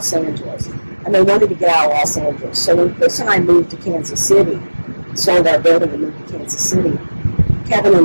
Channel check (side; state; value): both; inverted; correlation -1.00